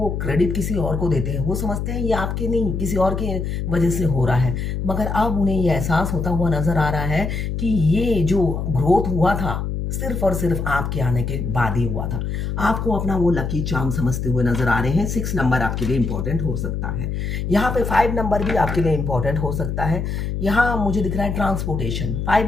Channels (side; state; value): left; noise; hum, 3 dB below the sound